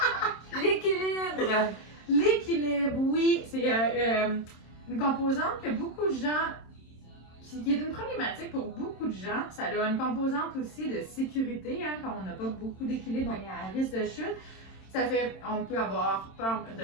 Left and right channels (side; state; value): right; late; 27 ms